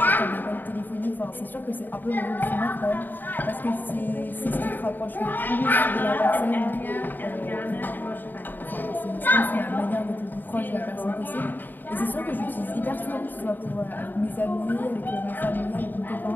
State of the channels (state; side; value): late; right; 0.090 ms